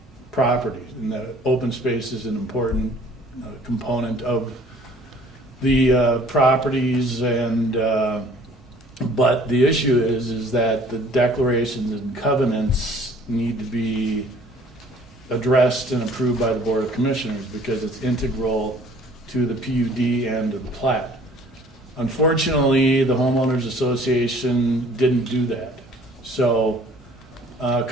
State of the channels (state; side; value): normal; both; correlation 0.54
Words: properties. And the open space is an important component of the properties, and but the issue is that the declarations and covenants need to be addressed and approved by the Board of Commissioners because it's integral to the PUD and to the plat. Unfortunately, the homeowners association didn't do that. So a